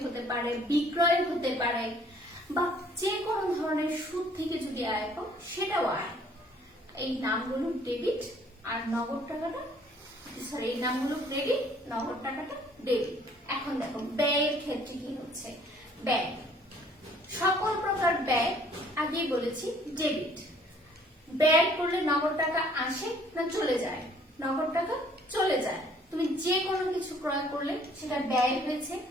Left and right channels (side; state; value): both; normal; correlation 0.59